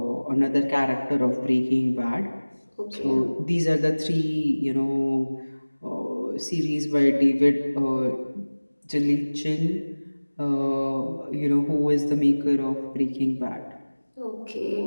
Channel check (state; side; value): inverted; both; correlation -1.00